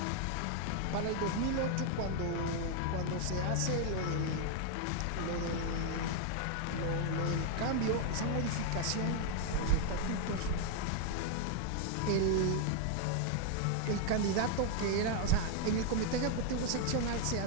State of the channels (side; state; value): both; different; correlation 0.00